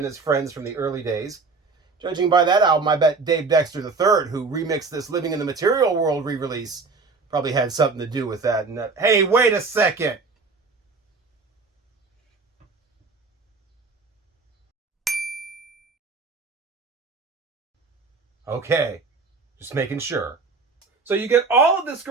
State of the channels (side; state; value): left; quieter; 4.2 dB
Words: his friends from the early days. Judging by that album, I bet Dave Dexter III, who remixed this Living in the Material World re-release, probably had something to do with that. And hey, wait a second. Okay, just making sure. So you get all of this